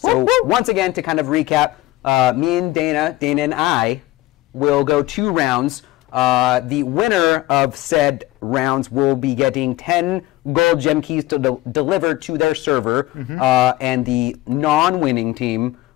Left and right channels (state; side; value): quieter; right; 17.6 dB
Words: once again, to kind of recap, me and Dana and I will go 2 rounds. The winner of said rounds will be getting 10 gold gem keys delivered to their server, and the non-winning team